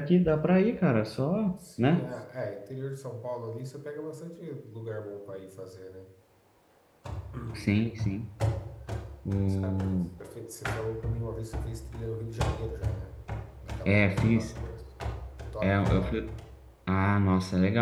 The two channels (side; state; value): both; identical; correlation 1.00